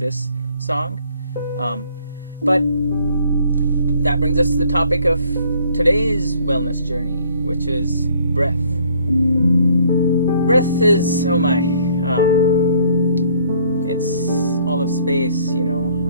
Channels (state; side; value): inverted; both; correlation -0.61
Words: song. But that brings us to the topic of today's wellness journey, which is breath. Breath is, it's all of space,